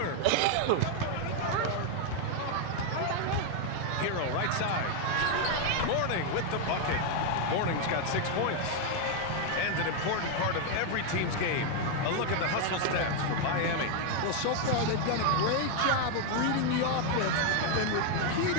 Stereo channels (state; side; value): different; both; correlation 0.01